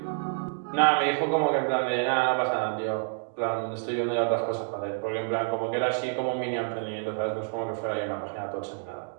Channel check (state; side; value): silent; left; digital silence